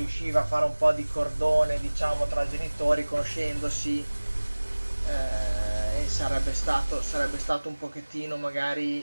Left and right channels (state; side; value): inverted; both; correlation -1.00